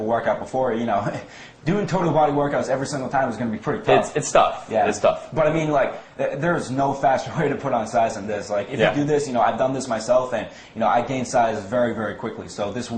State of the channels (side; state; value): both; identical; correlation 1.00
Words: workout before, you know, doing total body workouts every single time is going to be pretty tough. It's tough. Yeah, it's tough. But I mean, like, there's no faster way to put on size than this. Like, if you do this, you know, I've done this myself, and you know, I gain size very, very quickly. So this